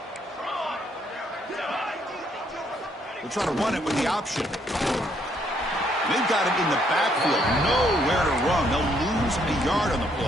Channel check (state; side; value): normal; both; correlation 0.70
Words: They'll try to run it with the option. They've got him in the backfield. Nowhere to run. They'll lose a yard on the